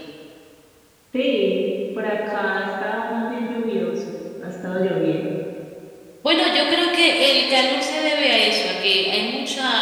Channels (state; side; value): identical; both; correlation 1.00